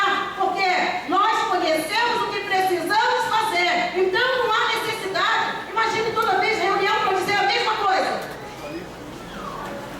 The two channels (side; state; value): both; identical; correlation 1.00